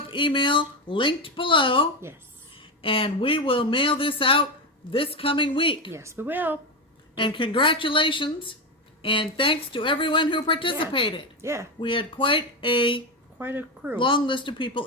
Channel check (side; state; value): both; normal; correlation 0.13